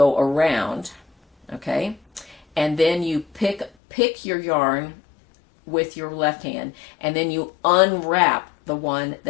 around, okay? And then you pick your yarn with your left hand, and then you unwrap the one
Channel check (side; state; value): right; drops out; at 3.7 s